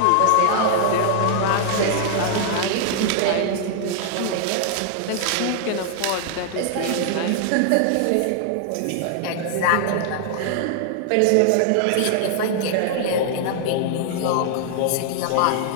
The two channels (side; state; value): both; different; correlation -0.01